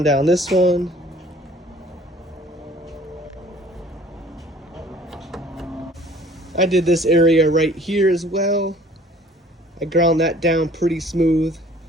down this one. I did this area right here as well. I ground that down pretty smooth.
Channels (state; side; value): normal; both; correlation 0.53